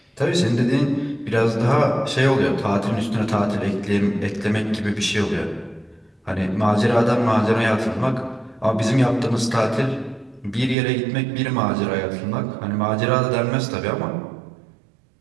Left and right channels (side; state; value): left; drops out; at 10.8 s